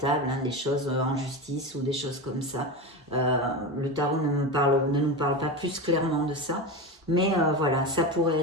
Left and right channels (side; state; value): both; normal; correlation 0.22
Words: hein, des choses en justice ou des choses comme ça. Le tarot ne nous parle pas plus clairement de ça. Mais voilà, ça pourrait